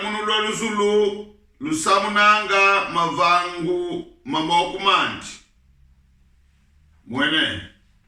loluzulu lusamunanga mavangu mamokumandi mwene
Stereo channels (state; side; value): identical; both; correlation 1.00